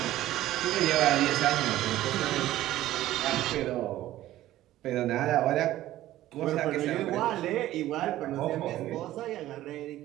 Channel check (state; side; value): quieter; left; 14.6 dB